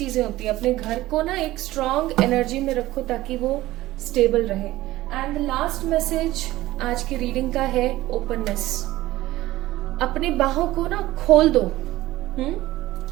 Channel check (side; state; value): left; quieter; 16.7 dB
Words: होती है। अपने घर को ना एक स्ट्रॉन्ग एनर्जी में रखो ताकि वो स्टेबल रहे। एंड द लास्ट मैसेज आज की रीडिंग का है ओपननेस। अपनी बाहों को ना खोल दो,